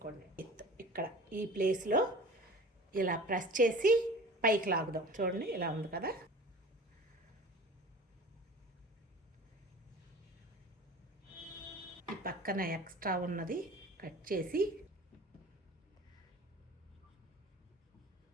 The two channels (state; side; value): normal; both; correlation 0.40